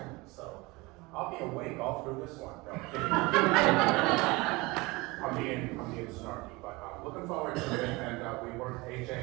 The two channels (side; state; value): left; quieter; 23.6 dB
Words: So I'll be awake all through this one. No, I'm kidding. I'm being snarky, but I'm looking forward to it. And we worked AJ